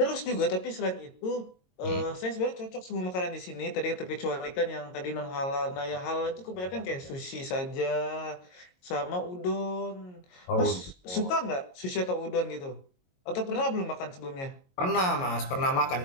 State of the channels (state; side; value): late; right; 22 ms